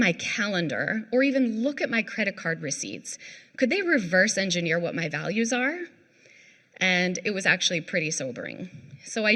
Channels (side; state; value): both; identical; correlation 1.00